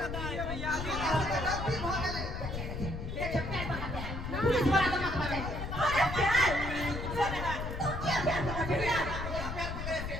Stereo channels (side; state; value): left; noise; rumble, 5 dB below the sound